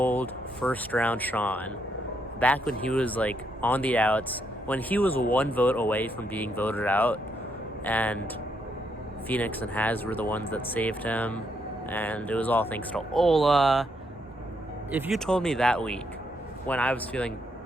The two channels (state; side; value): normal; both; correlation 0.76